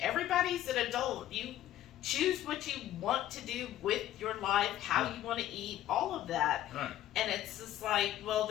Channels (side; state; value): right; quieter; 12.9 dB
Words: Everybody's an adult. You choose what you want to do with your life, how you want to eat, all of that. Right. And it's just like, well,